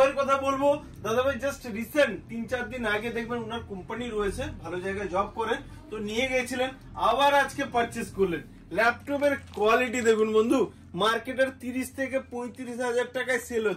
কথা বলবো, দাদাভাই জাস্ট রিসেন্ট 3-4 দিন আগে দেখবেন ওনার কোম্পানি রয়েছে, ভালো জায়গায় জব করেন, তো নিয়ে গেছিলেন, আবার আজকে পারচেস করলেন। ল্যাপটপের কোয়ালিটি দেখুন বন্ধু, মার্কেটের 30 থেকে 35 হাজার টাকায় সেল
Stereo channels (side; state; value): both; identical; correlation 1.00